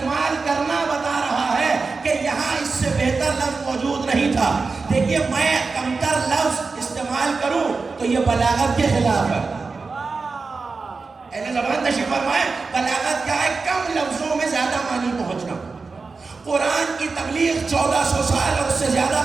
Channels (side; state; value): left; quieter; 4.3 dB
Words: کرنا بتا رہا ہے کہ یہاں اس سے بہتر لفظ موجود نہیں تھا. دیکھیے میں کمتر لفظ استعمال کروں تو یہ بلاغت کے خلاف ہے. اہل زبان تشریف فرمائے بلاغت کیا ہے؟ کم لفظوں میں زیادہ معنی پہنچنا. قرآن کی تبلیغ 1400 سال اور اس سے زیادہ